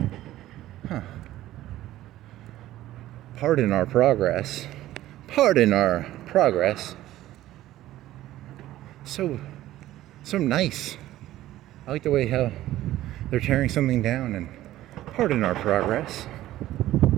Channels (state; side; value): quieter; left; 14.6 dB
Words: Huh. Pardon our progress. Pardon our progress. So nice. I like the way how they're tearing something down and pardon our progress.